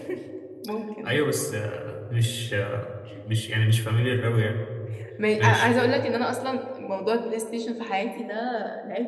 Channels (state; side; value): identical; both; correlation 1.00